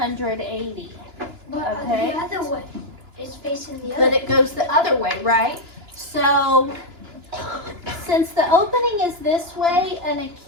But Okay. the other way. It's facing the other But it goes the other way, right? So, since the opening is this way, an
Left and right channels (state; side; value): late; left; 2.9 ms